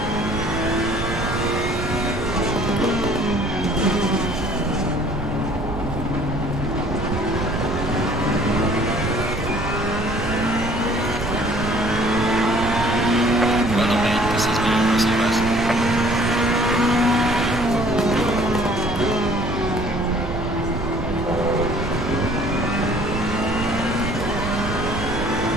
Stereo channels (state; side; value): noise; right; rumble, 7 dB below the sound